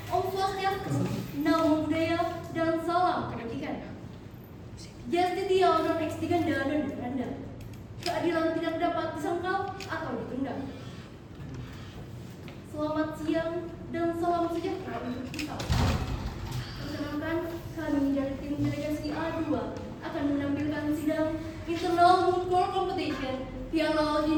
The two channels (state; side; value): identical; both; correlation 1.00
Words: Om Swastiastu, Namo Buddhaya, dan salam kebajikan. Justitia non extiganda non duranda. Keadilan tidak dapat disangkal atau ditunda. Selamat siang dan salam sejahtera untuk kita. Perkenalkan, kami dari tim delegasi A2 akan menampilkan sidang Internal Moot Court Competition Piala